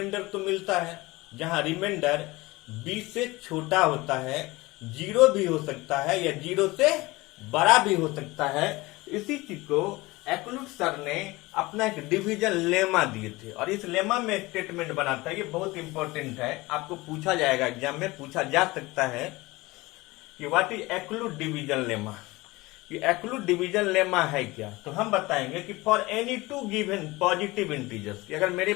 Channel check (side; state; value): right; quieter; 21.4 dB